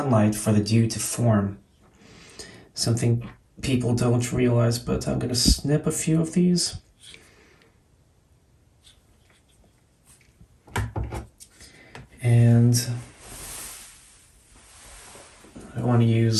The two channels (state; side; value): identical; both; correlation 1.00